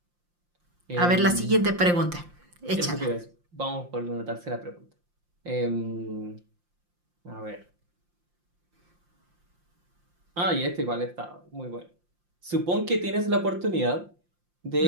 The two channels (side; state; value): left; late; 5.7 ms